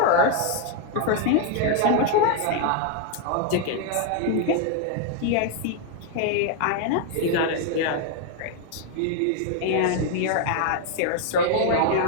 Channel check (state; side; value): different; both; correlation 0.00